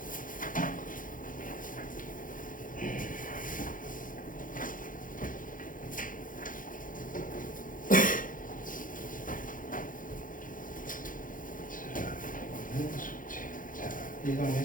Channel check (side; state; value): right; late; 0.39 ms